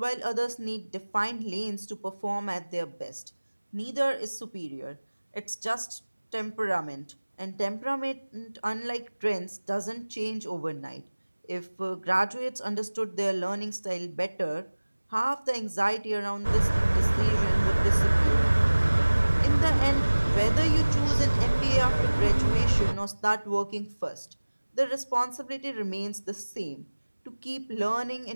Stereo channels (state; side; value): inverted; both; correlation -1.00